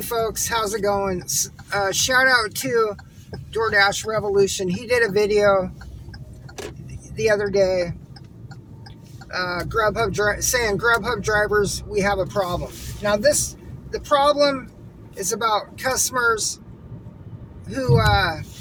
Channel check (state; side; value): identical; both; correlation 1.00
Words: folks, how's it going? Shout out to DoorDash Revolution. He did a video the other day, saying Grubhub drivers, we have a problem. Now the problem is about customers who